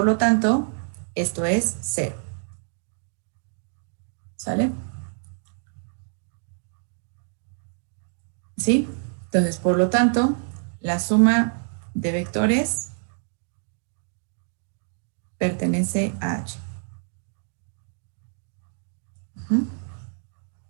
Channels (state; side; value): silent; left; 60 dB below the other